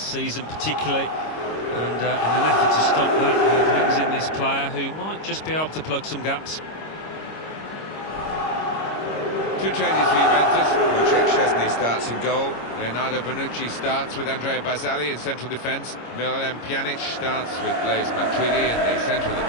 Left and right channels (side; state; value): right; late; 26 ms